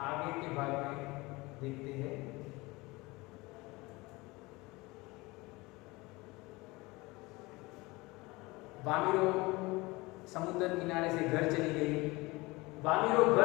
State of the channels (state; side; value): quieter; right; 22.9 dB